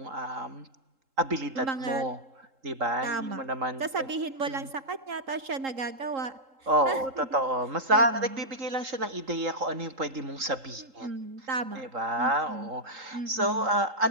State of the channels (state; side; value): late; left; 3.8 ms